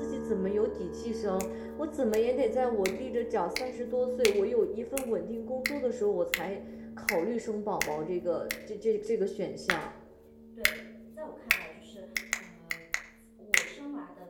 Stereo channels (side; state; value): both; identical; correlation 1.00